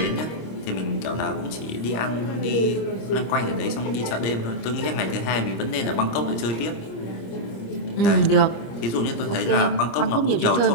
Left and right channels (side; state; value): right; late; 26 ms